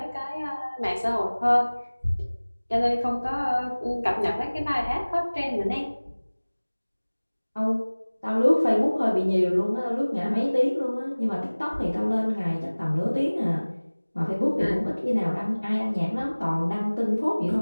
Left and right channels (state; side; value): inverted; both; correlation -1.00